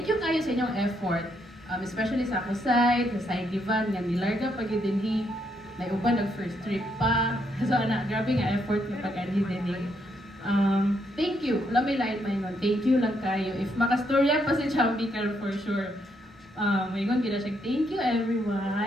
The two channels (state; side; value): normal; both; correlation 0.76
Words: you kayo sa inyong effort, especially sa ako side, sa side divan, nga nilarga pag dinhi, may uban nag-first trip pa. So ana, grabe nga effort ng pag-anhi din. Thank you. Wala may lain may nun. Thank you lang kayo. If makastorya pa si Chambi karon for sure. May gon gina siya. Thank you